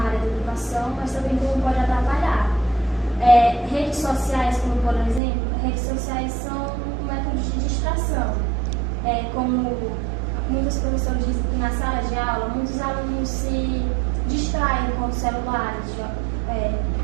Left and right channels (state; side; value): drops out; left; at 5.2 s